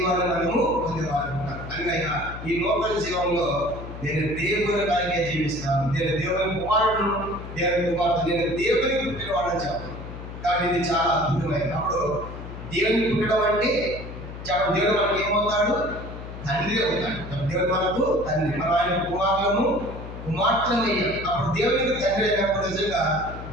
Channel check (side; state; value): left; noise; hum, 11 dB below the sound